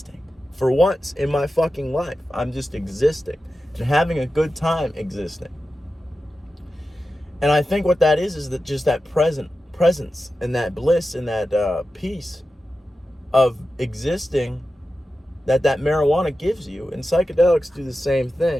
For once in my fucking life, I'm just existing and having a good time existing. And I think what that is that just that presence and that bliss and that peace of existing that marijuana gives you. And psychedelics do the same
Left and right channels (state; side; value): normal; both; correlation 0.92